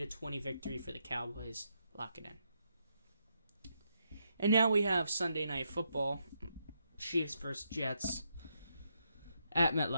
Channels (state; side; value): inverted; both; correlation -0.80